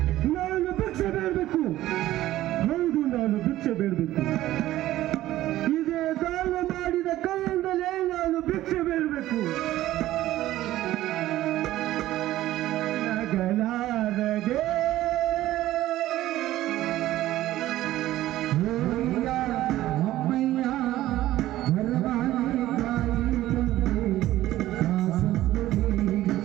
ನಾನು ಭಿಕ್ಷೆ ಬೇಡಬೇಕು. ಹೌದು, ನಾನು ಭಿಕ್ಷೆ ಬೇಡಬೇಕು.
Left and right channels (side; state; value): left; quieter; 14.9 dB